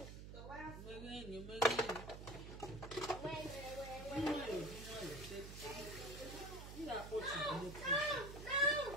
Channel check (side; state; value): right; noise; hum, 10 dB below the sound